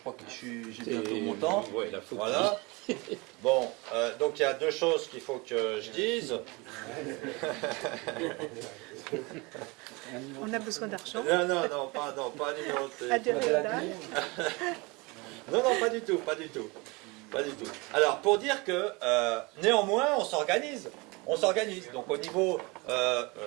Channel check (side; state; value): left; quieter; 26.2 dB